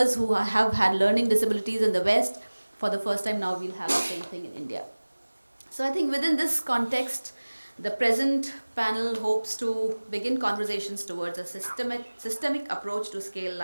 who have had learning disabilities in the West. For the first time now, we'll have the same thing in India. So I think within this context, the present panel hopes to begin conversations towards a systemic approach to scale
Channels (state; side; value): inverted; both; correlation -1.00